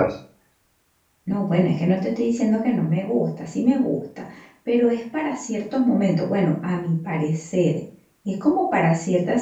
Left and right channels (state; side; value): identical; both; correlation 1.00